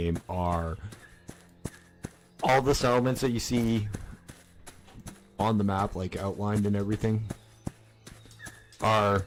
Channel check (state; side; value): identical; both; correlation 1.00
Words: are all the settlements that you see on the map, like outlined and everything, are